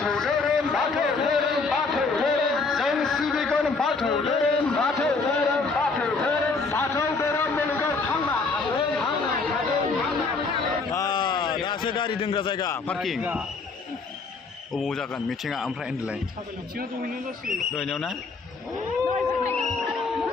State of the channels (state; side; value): quieter; right; 4.2 dB